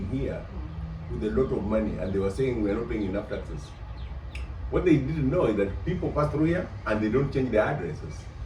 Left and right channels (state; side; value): identical; both; correlation 1.00